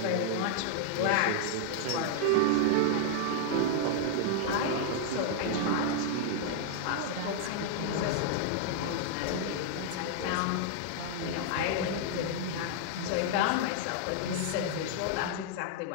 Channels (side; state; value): both; different; correlation 0.00